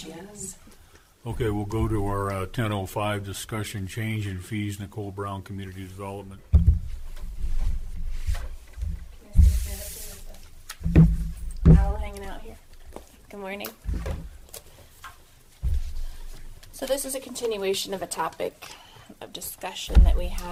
is. Okay, we'll go to our 10:05 discussion, change in fees, Nicole Brown, Community Development. All hanging out here. Good morning. So this is a continuation of a topic of discussion that we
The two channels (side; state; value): both; identical; correlation 1.00